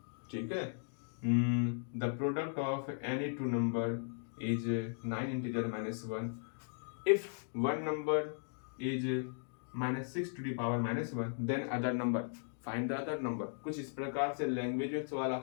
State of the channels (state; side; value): silent; right; digital silence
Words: ठीक है। The product of any two number is 9 integer -1 if one number is -6 to the power -1 then other number, find the other number। कुछ इस प्रकार से लैंग्वेज में सवाल